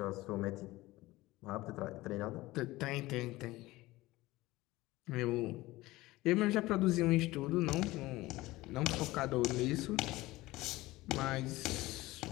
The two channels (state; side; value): quieter; right; 18.9 dB